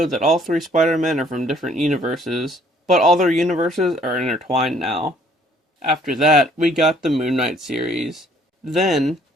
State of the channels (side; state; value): both; normal; correlation 0.60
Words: that all three Spider-Men are from different universes, but all their universes are intertwined now. After that, we got the Moon Knight series. Then,